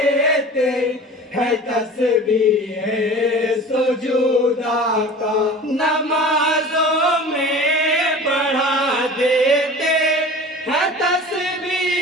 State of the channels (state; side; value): normal; both; correlation 0.39